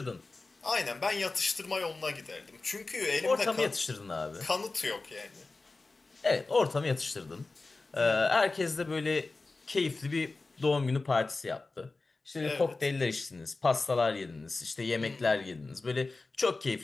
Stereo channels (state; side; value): quieter; right; 3.6 dB